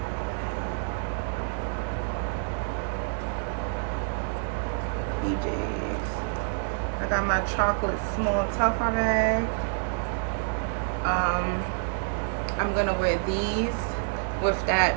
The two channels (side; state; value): left; silent; digital silence